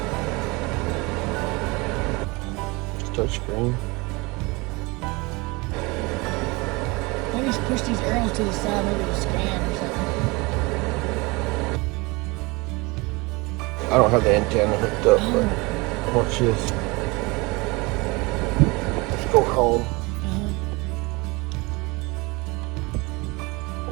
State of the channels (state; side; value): quieter; left; 25.3 dB